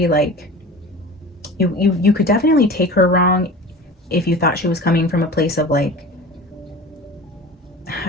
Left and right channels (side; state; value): both; normal; correlation 0.37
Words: like, you could definitely take her wrong if you thought she was coming from a place of like,